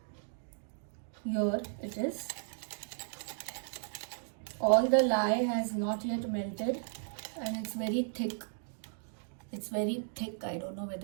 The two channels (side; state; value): left; silent; digital silence